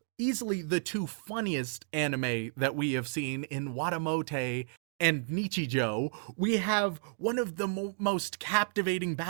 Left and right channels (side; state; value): left; silent; digital silence